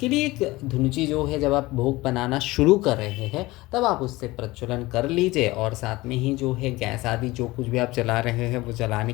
लिए एक धुनुची जो है, जब आप भोग बनाना शुरू कर रहे हैं तब आप उससे प्रज्वलन कर लीजिए, और साथ में ही जो है गैस आदि जो कुछ भी आप जला रहे हैं वो जलाने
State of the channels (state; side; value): quieter; right; 20.1 dB